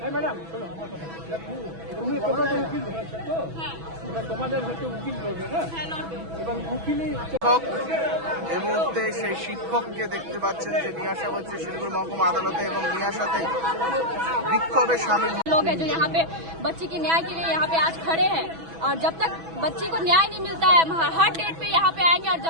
এই মুহূর্তে সেই শিক্ষককে দেখতে পাচ্ছেন যে নিয়ে আসা হচ্ছে শিলিগুড়ি মহকুমা আদালতে এবং নিয়ে আসাতে বিক্ষোভে সামিল लोग हैं जो यहाँ पे बच्ची के न्याय के लिए यहाँ पे आज खड़े हैं। और जब तक बच्ची को न्याय नहीं मिलता है, हर डेट पे यहाँ पे आएंगे और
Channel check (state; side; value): late; left; 6.1 ms